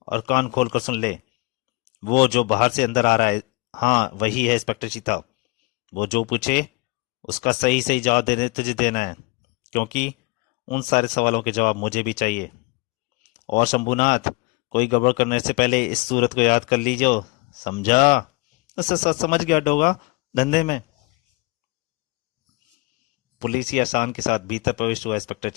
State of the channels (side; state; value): right; quieter; 27.0 dB